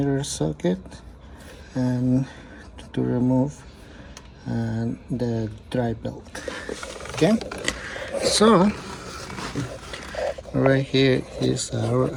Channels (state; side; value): identical; both; correlation 1.00